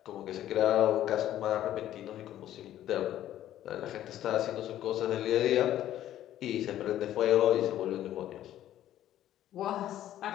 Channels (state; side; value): quieter; right; 12.4 dB